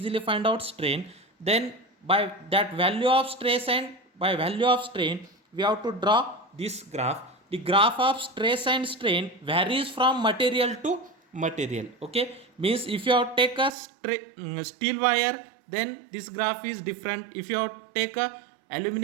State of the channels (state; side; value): drops out; left; at 13.7 s